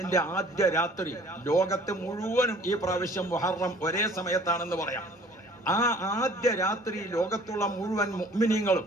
ആദ്യ രാത്രി ലോകത്ത് മുഴുവനും ഈ പ്രാവശ്യം മുഹറം ഒരേ സമയത്താണെന്ന് പറയാം. ആ ആദ്യ രാത്രി ലോകത്തുള്ള മുഴുവൻ മുഅ്മിനീങ്ങളും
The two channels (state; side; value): normal; both; correlation 0.52